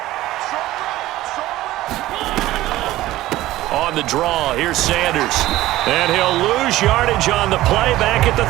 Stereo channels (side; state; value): left; quieter; 16.1 dB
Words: On the draw, here's Sanders. And he'll lose yardage on the play back at the